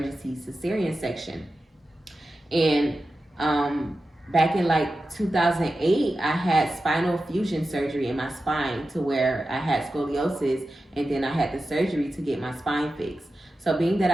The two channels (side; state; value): both; normal; correlation 0.92